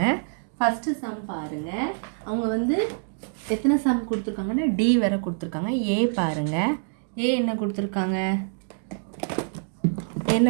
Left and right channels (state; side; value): silent; left; digital silence